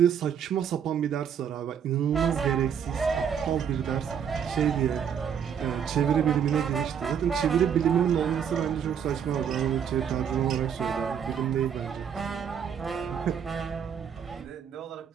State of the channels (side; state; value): left; quieter; 8.0 dB